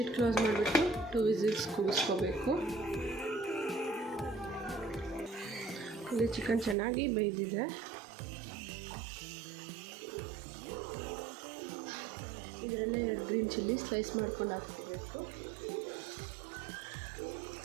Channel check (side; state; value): left; drops out; at 6.8 s